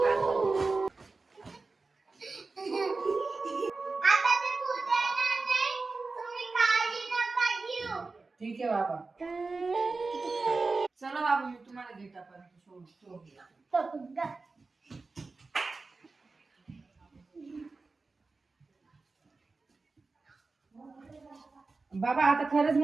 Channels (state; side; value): quieter; left; 3.8 dB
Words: ठीक आहे बाबा. चला बाबा, मी तुम्हाला गेटापर्यंत सोडतो. बाबा आता खरंच